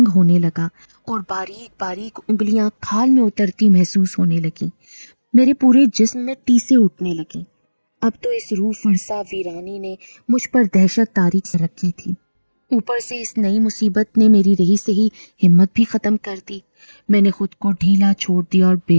ہونے لگا اور باریک باریک انگلیاں کھال میں اترتی محسوس ہونے لگیں۔ میرے پورے جسم میں ٹیسیں اٹھنے لگیں۔ اب تو اس روح فرسا ویرانی نے مجھ پر دہشت تاریخ سے رکھی تھی، اوپر سے اس نئی مصیبت نے میری رہی سہی ہمت بھی ختم کر دی۔ میں نے خود کو ڈھیلا چھوڑ دیا اور بے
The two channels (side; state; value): both; inverted; correlation -1.00